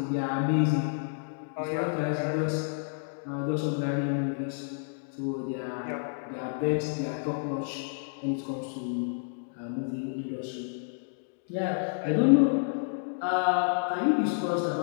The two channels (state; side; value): silent; right; digital silence